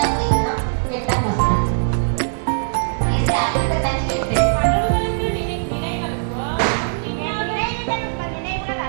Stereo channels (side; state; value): left; silent; 65 dB below the other